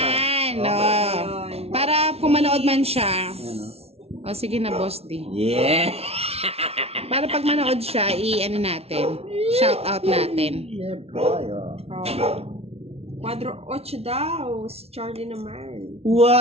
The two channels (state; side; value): late; left; 0.30 ms